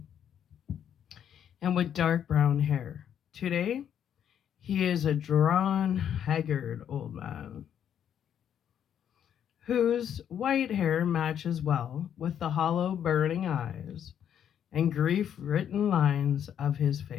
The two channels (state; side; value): quieter; right; 9.2 dB